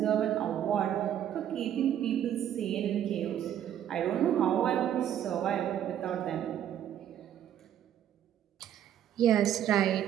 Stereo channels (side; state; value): left; quieter; 10.5 dB